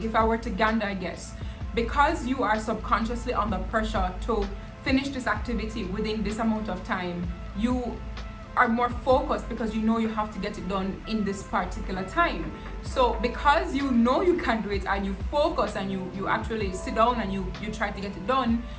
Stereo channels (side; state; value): both; identical; correlation 1.00